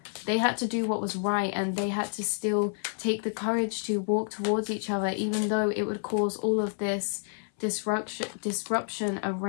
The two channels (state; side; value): silent; right; 59 dB below the other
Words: They had to do what was right, and they had to still take the courage to walk towards each other, even though it would cause all of this disruption